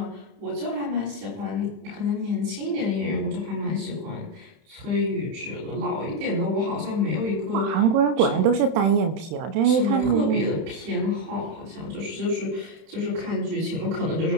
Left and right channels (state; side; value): late; left; 31 ms